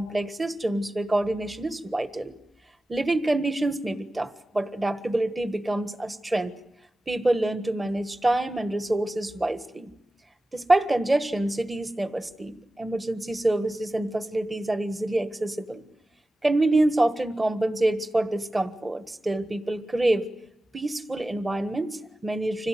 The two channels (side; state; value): both; normal; correlation 0.95